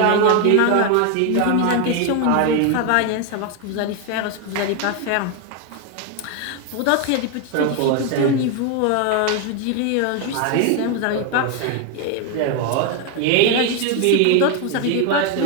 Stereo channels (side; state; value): both; different; correlation 0.01